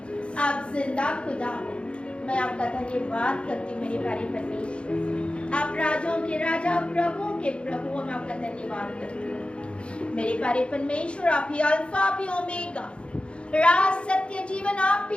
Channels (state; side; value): late; right; 0.058 ms